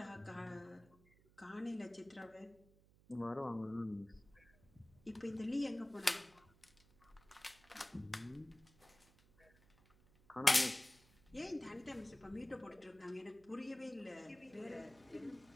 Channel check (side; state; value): right; noise; hum, 27 dB below the sound